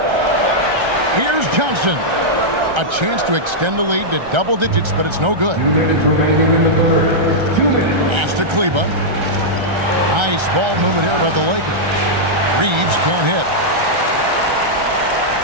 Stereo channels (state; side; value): late; left; 1.3 ms